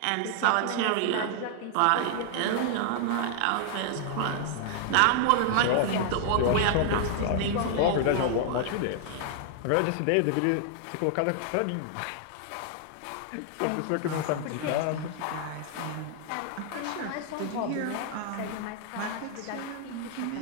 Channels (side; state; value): both; different; correlation 0.00